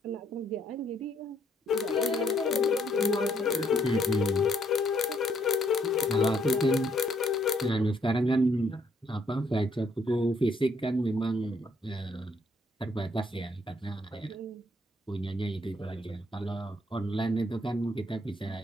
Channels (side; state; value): both; normal; correlation 0.70